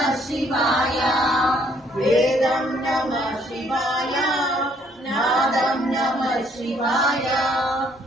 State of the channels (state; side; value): normal; both; correlation 0.65